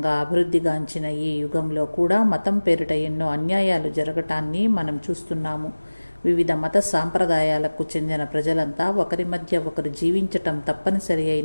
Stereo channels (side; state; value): both; inverted; correlation -1.00